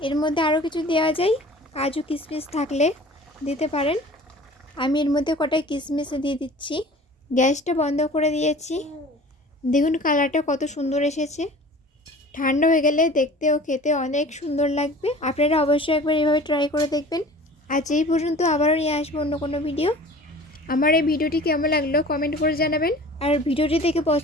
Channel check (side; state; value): both; normal; correlation 0.43